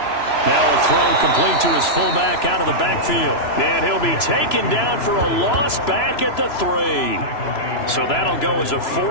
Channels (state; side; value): late; right; 3.0 ms